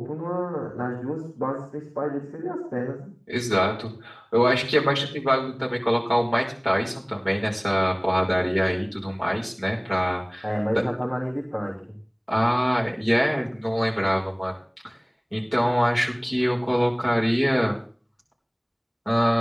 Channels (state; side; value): identical; both; correlation 1.00